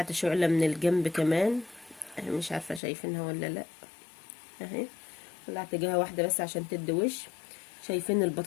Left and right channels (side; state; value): right; drops out; at 2.8 s